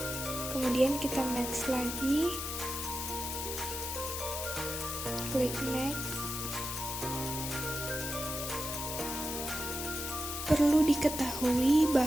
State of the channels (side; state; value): left; noise; hiss, 4 dB below the sound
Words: Kemudian kita next lagi. Klik next. Perlu diketahui